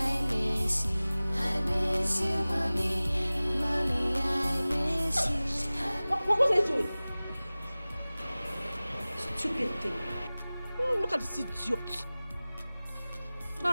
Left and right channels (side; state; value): both; inverted; correlation -0.99